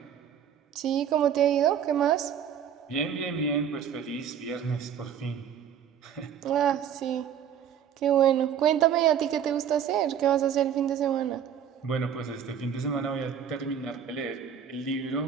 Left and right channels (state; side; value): quieter; left; 8.6 dB